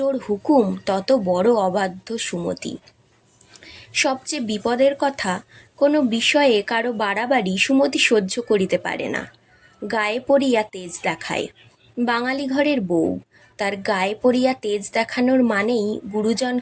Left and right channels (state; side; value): identical; both; correlation 1.00